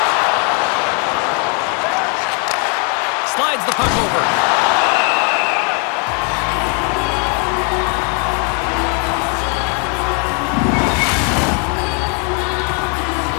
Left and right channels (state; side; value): quieter; right; 37.9 dB